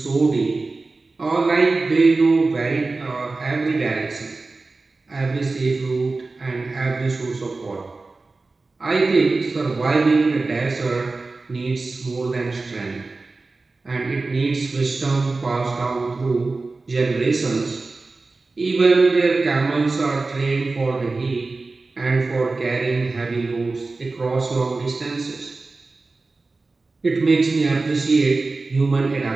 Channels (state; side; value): quieter; left; 3.6 dB